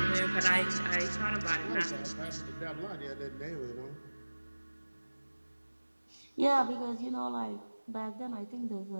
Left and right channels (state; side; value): inverted; both; correlation -1.00